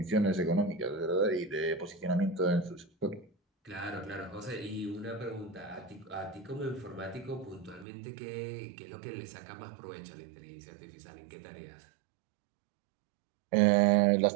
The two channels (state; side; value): drops out; left; at 7.9 s